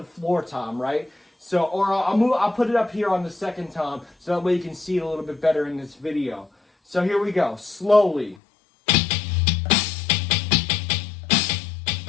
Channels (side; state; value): right; drops out; at 8.3 s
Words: floor tom, right? So, or I'll put it up here on the second tom, so that way you can see it a little bit better in this video. So here we go, slowly.